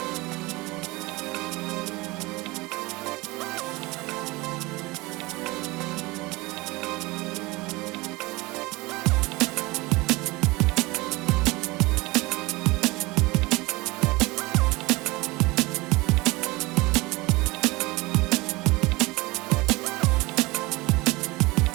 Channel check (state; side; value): quieter; left; 22.7 dB